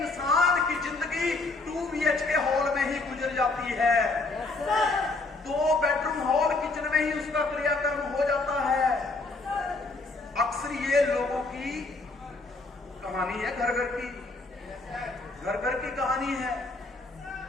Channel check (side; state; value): right; quieter; 3.4 dB